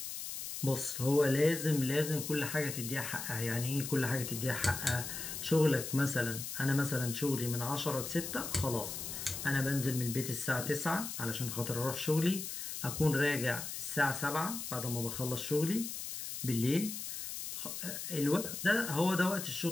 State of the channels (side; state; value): left; noise; hiss, 6 dB below the sound